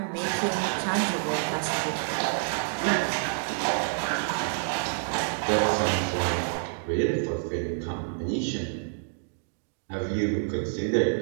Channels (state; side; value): silent; left; digital silence